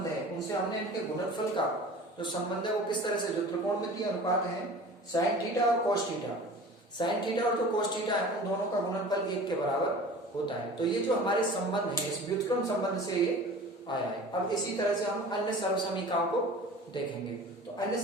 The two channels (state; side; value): normal; both; correlation 0.40